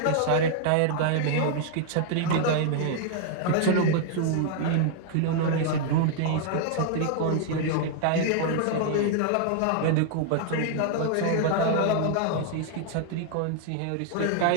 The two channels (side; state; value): both; different; correlation 0.00